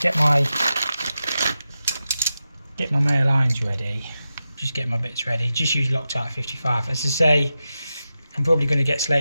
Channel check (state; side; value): inverted; both; correlation -0.91